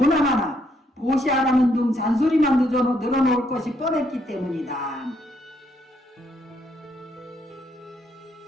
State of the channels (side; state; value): both; normal; correlation 0.73